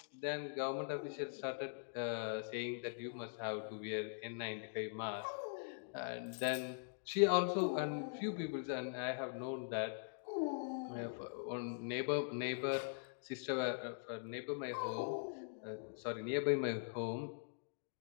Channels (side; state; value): right; silent; digital silence